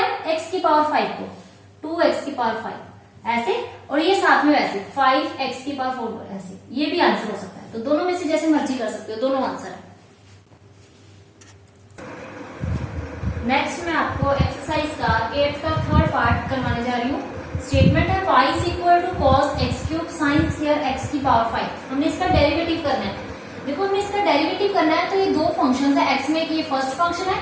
x की पावर 5 को, 2x की पावर 5 ऐसे, और ये साथ में वैसे 5x की पावर 4 ऐसे, ये भी आंसर हो सकता है। तो दोनों में से जैसे मर्जी कर सकते हो, दोनों आंसर है। नेक्स्ट मैं आपको एक्सरसाइज का 8th का थर्ड पार्ट करवाने जा रही हूँ। स्टेटमेंट है y is equal to cos x cube sine square x की पावर 5, हमने इसका डेरिवेटिव करना है। देखो हमने इसका डेरिवेटिव करना है, तो ये दो फंक्शन है, x में ये फर्स्ट फंक्शन है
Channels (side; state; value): both; identical; correlation 1.00